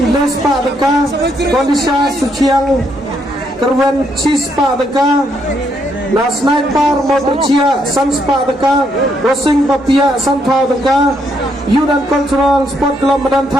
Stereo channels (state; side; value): normal; both; correlation 0.75